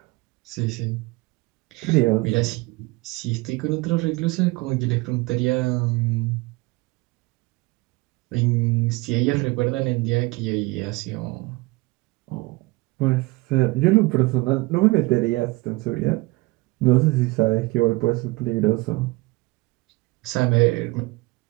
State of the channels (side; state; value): left; quieter; 23.1 dB